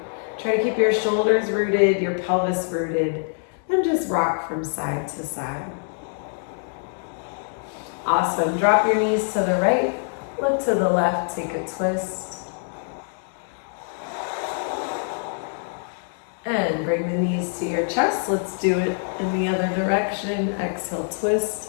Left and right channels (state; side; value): silent; right; 62 dB below the other